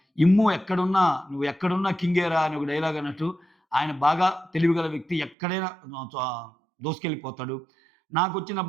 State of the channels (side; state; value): left; drops out; at 5.4 s